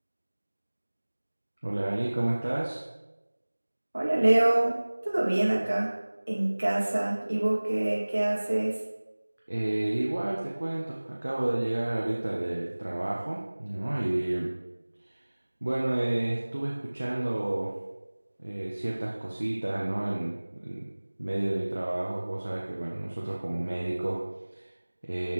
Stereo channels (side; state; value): both; inverted; correlation -1.00